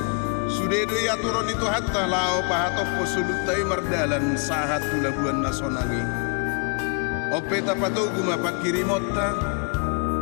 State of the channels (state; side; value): quieter; right; 38.7 dB